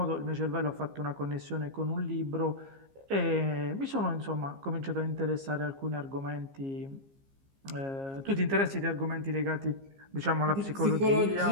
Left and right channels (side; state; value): left; late; 15 ms